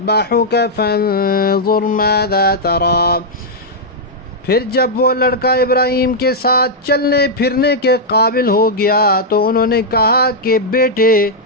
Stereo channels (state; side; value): normal; both; correlation -0.05